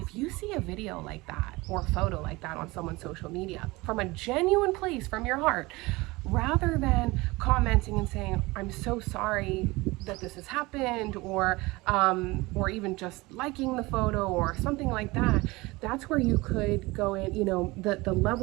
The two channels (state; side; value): quieter; left; 22.2 dB